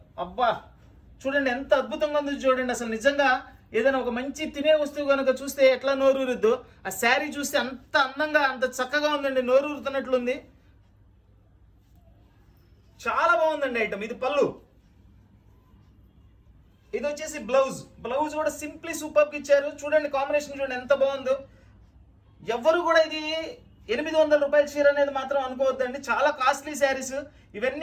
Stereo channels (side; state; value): both; identical; correlation 1.00